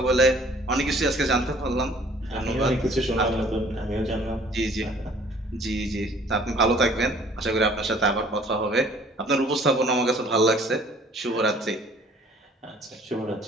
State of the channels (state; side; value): normal; both; correlation 0.55